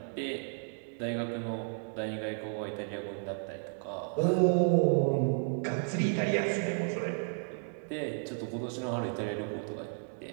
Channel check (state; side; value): silent; left; 56 dB below the other